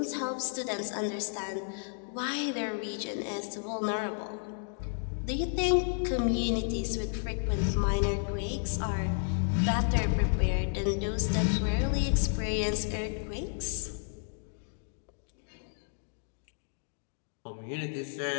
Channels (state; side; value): silent; right; digital silence